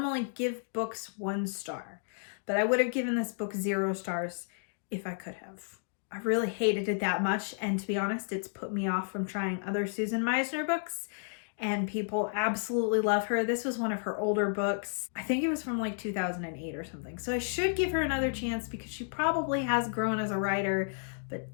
give books 1 star, but I would have given this book 0 stars if I could have. I really hated it that much, and to be honest, it's put me off from trying other Susan Meisner books, and people absolutely love her. This was one of her older books. I think it was from like 2008 or something. So I should give her another chance because she probably has grown as a writer, but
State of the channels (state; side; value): silent; right; digital silence